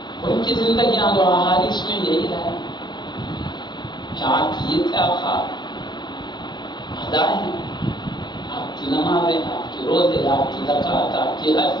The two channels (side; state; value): right; late; 0.21 ms